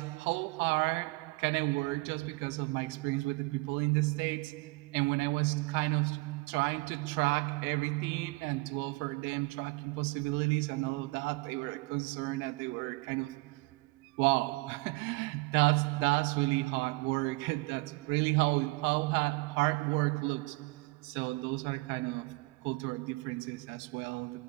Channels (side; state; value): left; quieter; 25.5 dB